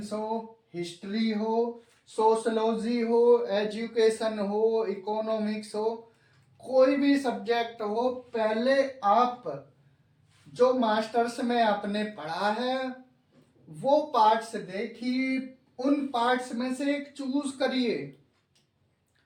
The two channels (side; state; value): both; identical; correlation 1.00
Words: हो, हिस्ट्री हो, सोशलॉजी हो, एजुकेशन हो, इकोनॉमिक्स हो, कोई भी सब्जेक्ट हो, पहले आप जो मास्टर्स में आपने पढ़ा है वो पार्ट्स देखिए, उन पार्ट्स में से एक चूज करिए।